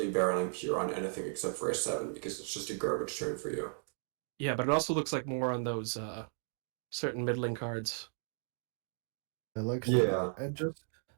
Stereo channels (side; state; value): left; silent; digital silence